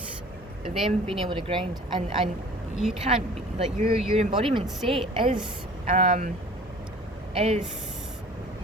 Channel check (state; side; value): normal; both; correlation 0.47